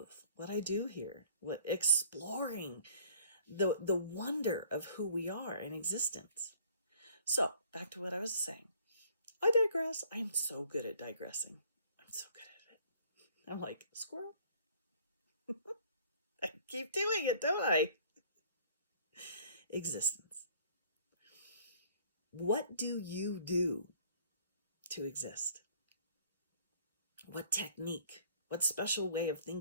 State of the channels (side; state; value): both; inverted; correlation -0.56